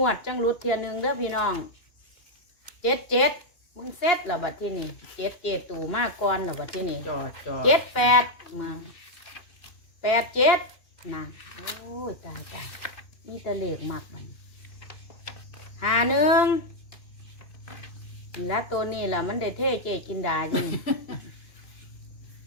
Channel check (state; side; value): late; right; 2.5 ms